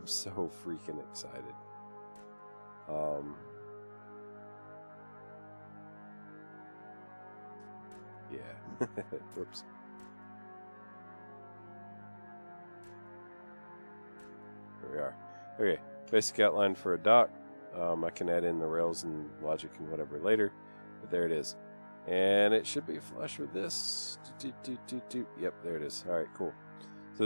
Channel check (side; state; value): both; inverted; correlation -1.00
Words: so freaking excited. Yeah. Whoops. There we are. Okay, basic outline for a dock. I can add in the rails and logic and whatever later, but there it is. And it should be flush with this. Yep, there it is. All right, cool. So